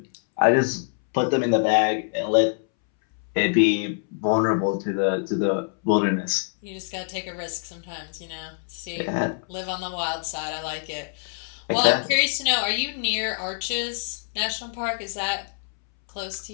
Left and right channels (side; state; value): right; silent; 62 dB below the other